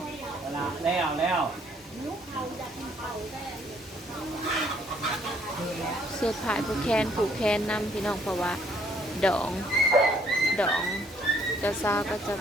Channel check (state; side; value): normal; both; correlation 0.65